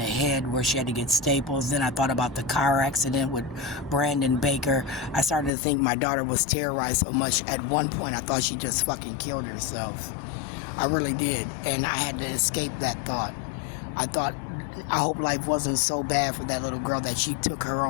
head where she had to get staples. Then I thought about the car accident with Brandon Baker. I started to think my daughter was terrorized so much. At one point, I thought she just fucking killed herself. I really did. And I had to escape that thought. I hope life wasn't so bad for that little girl that she took her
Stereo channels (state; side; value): drops out; right; at 5.5 s